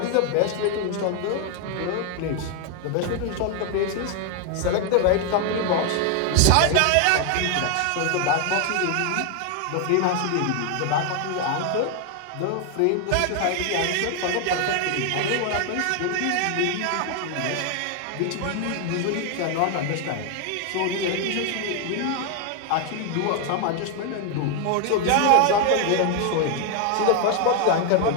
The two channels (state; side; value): different; both; correlation 0.01